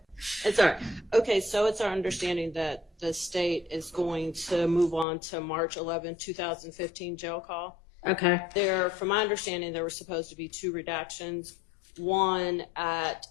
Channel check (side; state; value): right; drops out; at 5.1 s